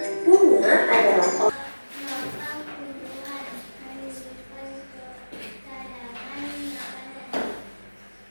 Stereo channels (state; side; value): inverted; both; correlation -1.00